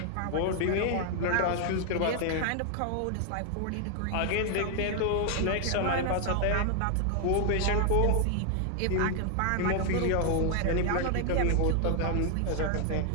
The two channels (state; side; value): different; both; correlation 0.00